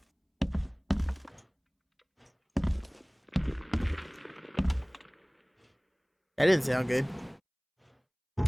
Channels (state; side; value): identical; both; correlation 1.00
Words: That didn't sound good.